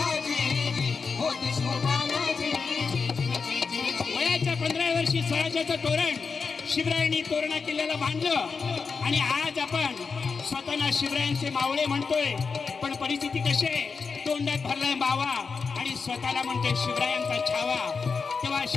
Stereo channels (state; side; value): quieter; right; 5.1 dB